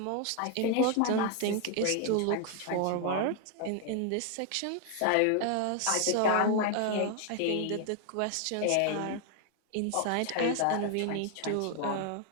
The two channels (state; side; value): different; both; correlation 0.00